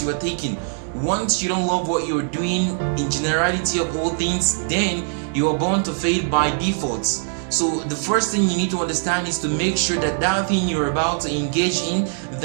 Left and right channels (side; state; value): left; silent; digital silence